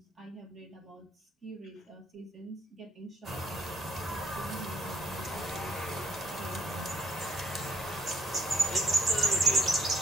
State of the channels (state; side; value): normal; both; correlation 0.61